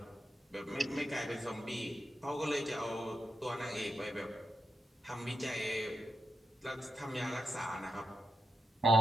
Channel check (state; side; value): normal; both; correlation 0.85